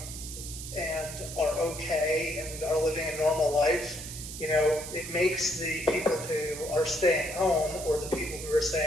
and are okay and are living a normal life, it makes the people who are staying home or the people who are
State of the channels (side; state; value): right; noise; hiss, 10 dB below the sound